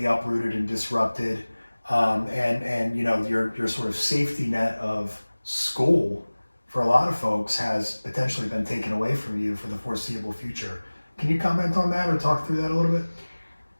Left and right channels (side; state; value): both; inverted; correlation -1.00